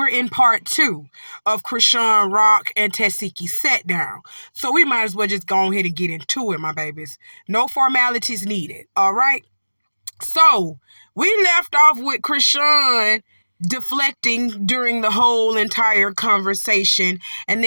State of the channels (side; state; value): both; inverted; correlation -1.00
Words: in part 2 of Chrisean, Rock, and Tesehki set down. So we might as well just go ahead and get into it, my babies. No formalities needed, all right? So, we left off with Chrisean deflecting during the whole entire conversation, and